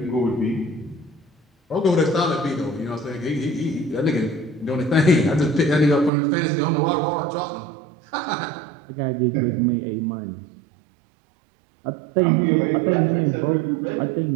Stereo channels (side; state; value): left; drops out; at 6.1 s